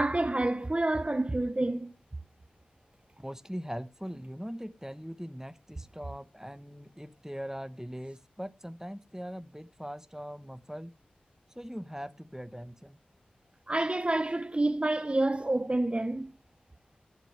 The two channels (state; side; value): normal; both; correlation 0.97